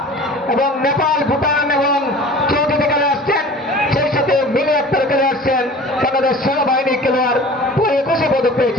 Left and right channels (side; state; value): both; normal; correlation 0.42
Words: এবং নেপাল, ভুটান এবং চৌধুরী খেলে আসছেন। সেই সাথে মিলে আক্তার খেলে আসছেন, বাংলাদেশ সেনাবাহিনী খেলোয়াড় 21 পদক